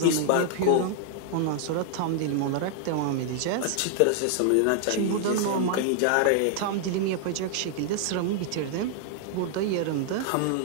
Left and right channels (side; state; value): both; different; correlation -0.01